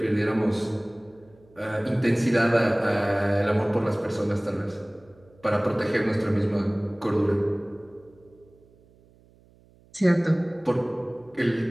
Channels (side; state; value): right; noise; hum, 29 dB below the sound